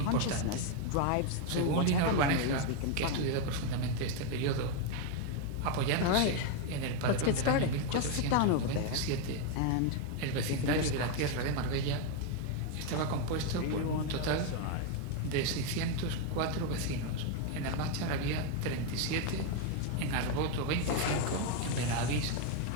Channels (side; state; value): both; different; correlation 0.01